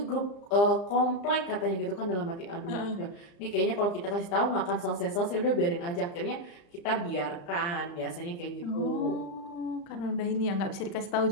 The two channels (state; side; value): late; right; 34 ms